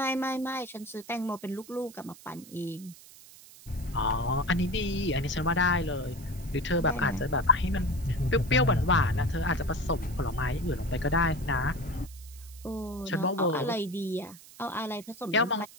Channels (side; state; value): right; noise; hiss, 20 dB below the sound